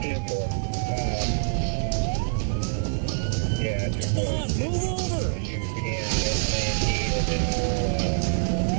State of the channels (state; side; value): silent; left; 58 dB below the other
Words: Come on, move over! You can S19 and then we'll